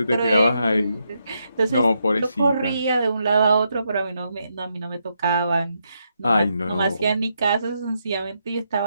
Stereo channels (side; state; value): both; inverted; correlation -0.81